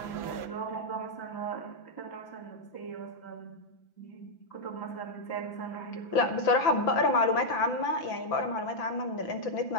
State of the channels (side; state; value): right; late; 5.9 ms